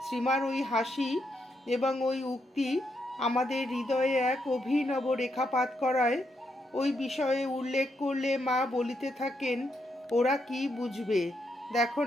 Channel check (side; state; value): both; normal; correlation 0.79